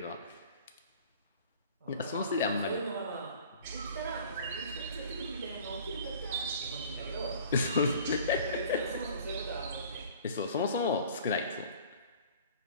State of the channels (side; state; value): both; inverted; correlation -0.47